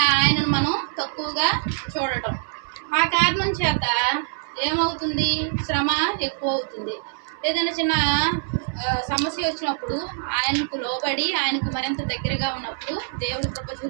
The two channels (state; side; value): silent; left; 63 dB below the other